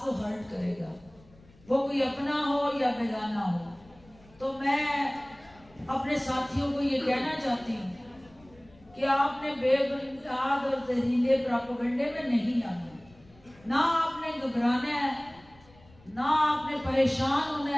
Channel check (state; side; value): noise; left; rumble, 26 dB below the sound